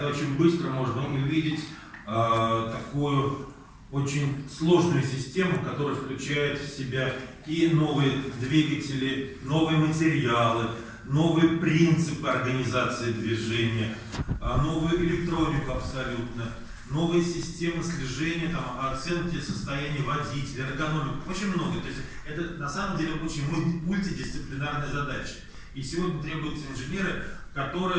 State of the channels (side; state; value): both; identical; correlation 1.00